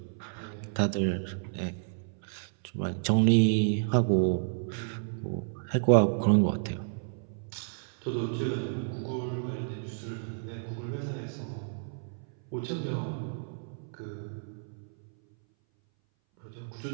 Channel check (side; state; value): left; silent; 57 dB below the other